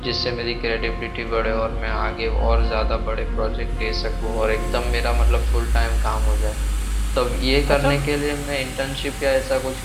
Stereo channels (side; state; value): both; identical; correlation 1.00